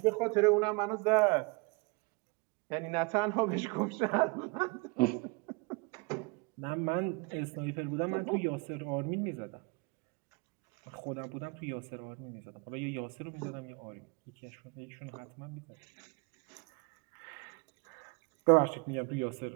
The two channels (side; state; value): left; quieter; 29.1 dB